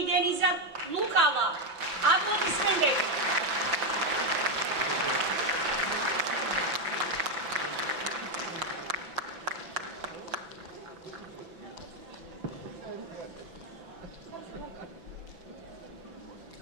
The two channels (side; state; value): left; late; 6.0 ms